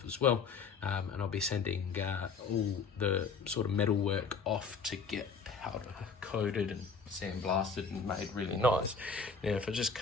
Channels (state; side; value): quieter; right; 5.1 dB